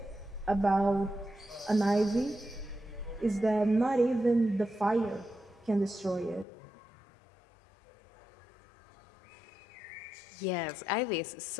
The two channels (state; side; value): drops out; right; at 6.5 s